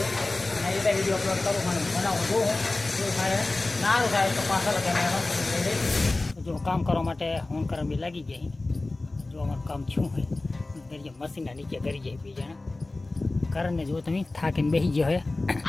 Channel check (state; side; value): quieter; right; 3.1 dB